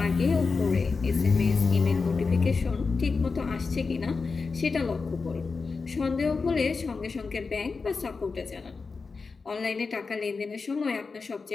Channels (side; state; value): right; quieter; 4.5 dB